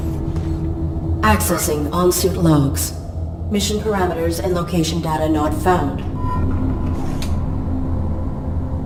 Accessing on-suit logs. Mission parameters and location data not found.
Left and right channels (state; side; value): identical; both; correlation 1.00